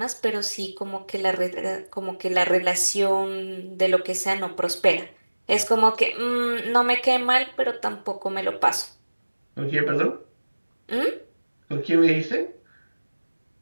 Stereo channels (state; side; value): inverted; both; correlation -1.00